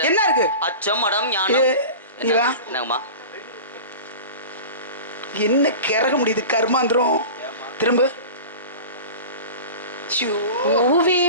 என்ன இருக்கு? அச்சம் மடம் ஞானம். என்னங்கம்மா? என்ன கிறக முடியுது கர்மாந்திரம். திரும்ப பூவே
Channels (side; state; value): both; inverted; correlation -0.34